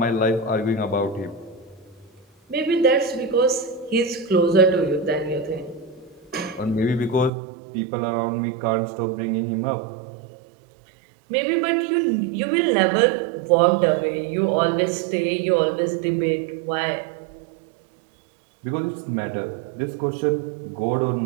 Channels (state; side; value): drops out; left; at 7.3 s